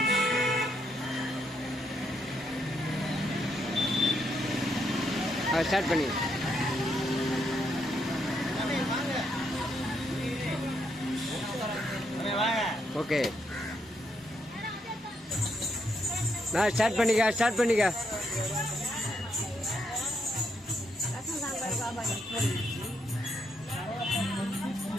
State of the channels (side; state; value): both; normal; correlation 0.77